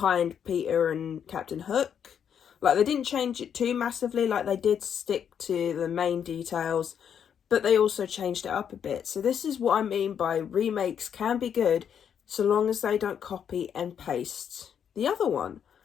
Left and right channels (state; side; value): quieter; right; 8.2 dB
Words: Peter and Captain Hook. Like, they didn't change it too massively. Like, they did stick to the main details, but they also changed it up a bit. So this is what I mean by remakes can be good so long as they don't copy and paste the other one.